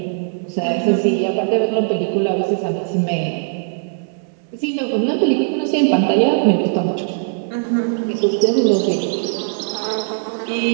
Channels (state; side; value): silent; left; digital silence